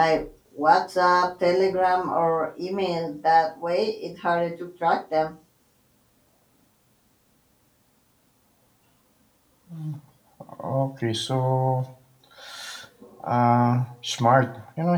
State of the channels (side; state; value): both; identical; correlation 1.00